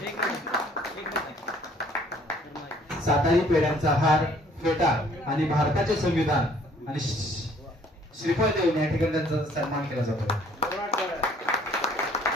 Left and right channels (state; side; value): normal; both; correlation 0.59